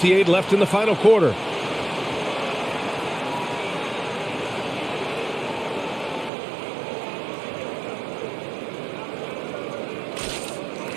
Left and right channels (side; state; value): left; drops out; at 6.3 s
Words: left in the final quarter.